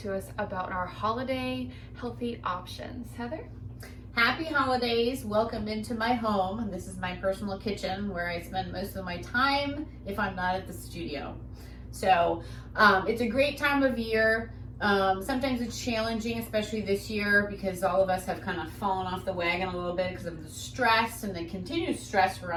us about our holiday healthy options. Heather? Happy holidays. Welcome into my home. This is my personal kitchen where I spend most of my time if I'm not at the studio. So it's a great time of year. Sometimes it's challenging, especially this year, because all of us have kind of fallen off the wagon a little bit because of the stress and the continued stress we're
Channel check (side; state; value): both; identical; correlation 1.00